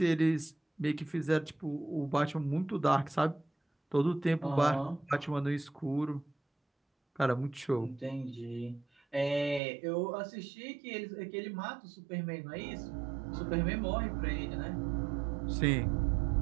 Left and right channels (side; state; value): left; drops out; at 9.6 s